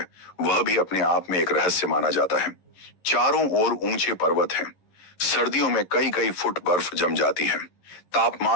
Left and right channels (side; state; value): right; late; 11 ms